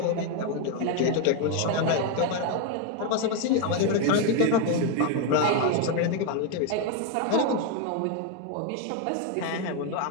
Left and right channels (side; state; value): both; different; correlation 0.01